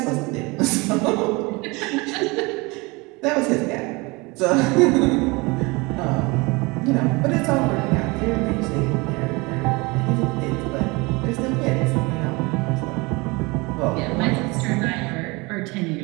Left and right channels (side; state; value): left; quieter; 25.5 dB